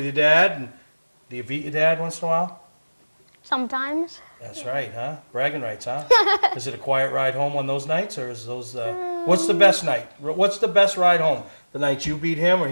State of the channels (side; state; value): both; inverted; correlation -1.00